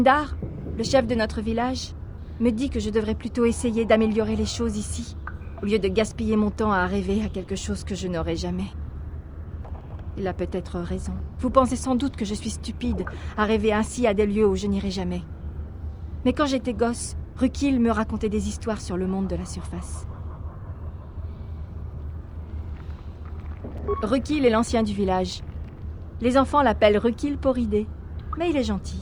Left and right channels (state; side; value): identical; both; correlation 1.00